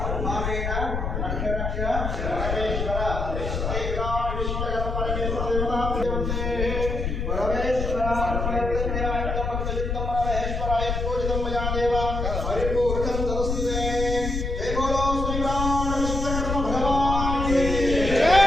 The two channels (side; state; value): left; noise; rumble, 2 dB below the sound